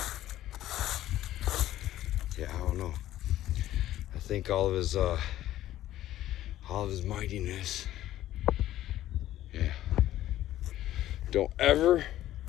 Yeah, I don't know. I think all of his mightiness. Yeah. Don't ever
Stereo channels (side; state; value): right; quieter; 13.7 dB